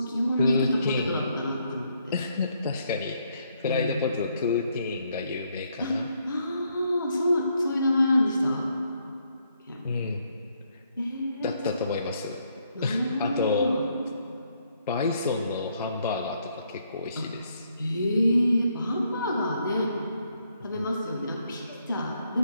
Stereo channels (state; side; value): inverted; both; correlation -0.73